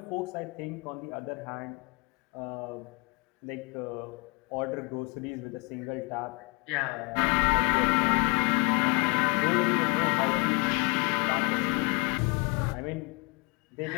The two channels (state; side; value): quieter; right; 30.9 dB